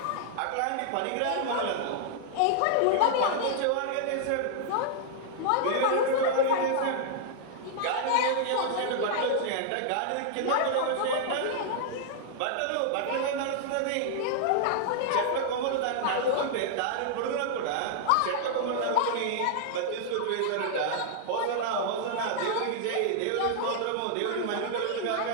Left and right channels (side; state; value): both; different; correlation -0.01